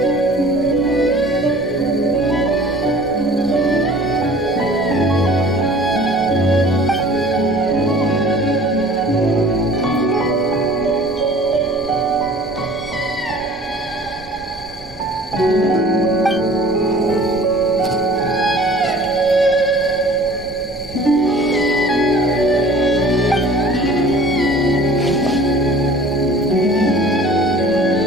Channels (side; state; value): right; noise; rumble, 22 dB below the sound